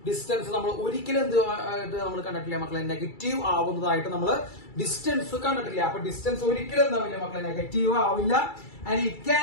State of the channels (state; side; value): late; right; 2.3 ms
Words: ഡിസ്റ്റൻസ് നമ്മൾ ഒരിക്കലും നമ്മൾ കണ്ടിട്ടില്ല മക്കളെ, നെഗറ്റീവ് ആവുന്നതായിട്ട് നമ്മൾ ഡിസ്റ്റൻസ് കണ്ടിട്ടില്ല. അപ്പൊ ഡിസ്റ്റൻസ് ഒരിക്കലും എന്താവില്ല മക്കളെ, നെഗറ്റീവ് ആവില്ല. And it